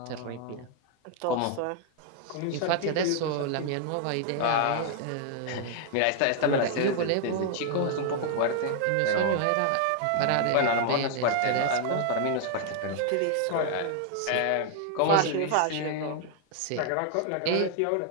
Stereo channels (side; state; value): both; different; correlation 0.00